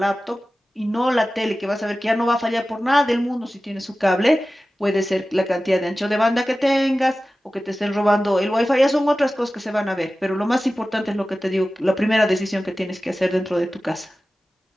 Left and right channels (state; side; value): normal; both; correlation 0.95